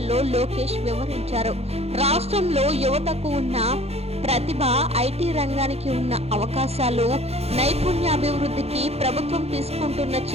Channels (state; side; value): late; left; 0.30 ms